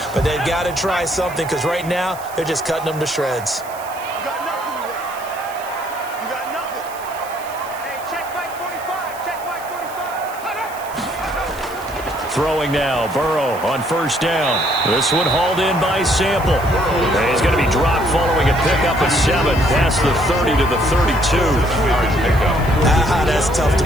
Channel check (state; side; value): noise; right; hiss, 18 dB below the sound